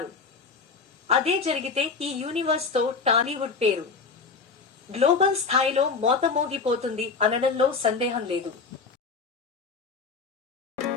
అదే జరిగితే ఈ యూనివర్స్ తో టాలీవుడ్ పేరు గ్లోబల్ స్థాయిలో మోతమోగిపోతుంది అనడంలో సందేహం లేదు.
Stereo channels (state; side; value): quieter; right; 4.8 dB